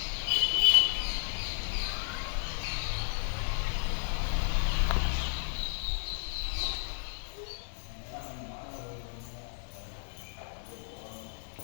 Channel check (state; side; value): silent; right; digital silence